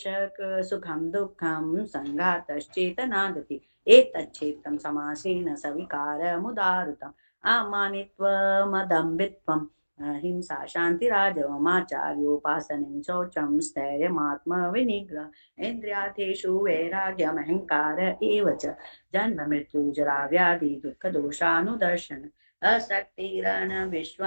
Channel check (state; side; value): inverted; both; correlation -1.00